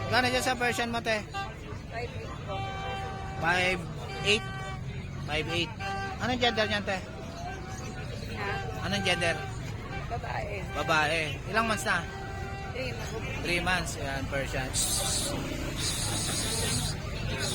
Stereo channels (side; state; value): both; identical; correlation 1.00